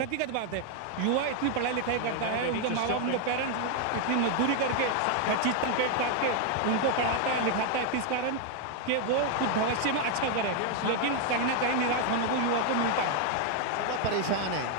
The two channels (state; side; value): different; both; correlation 0.00